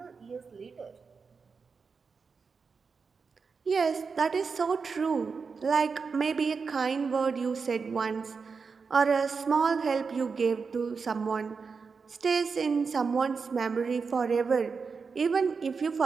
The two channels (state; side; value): quieter; left; 5.2 dB